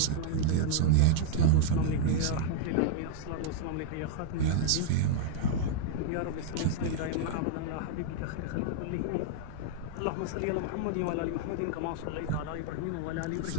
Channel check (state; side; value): different; both; correlation -0.01